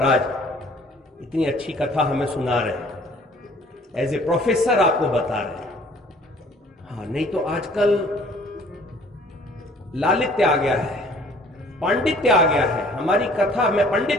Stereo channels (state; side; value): normal; both; correlation 0.55